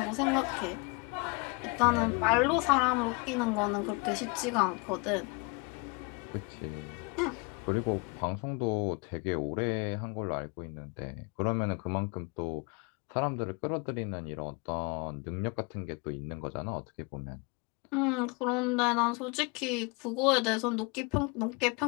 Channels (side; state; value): right; quieter; 29.2 dB